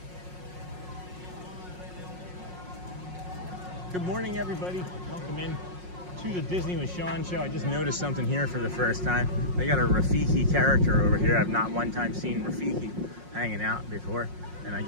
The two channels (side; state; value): left; late; 5.5 ms